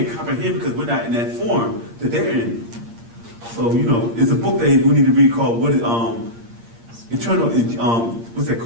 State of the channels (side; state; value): left; late; 8.6 ms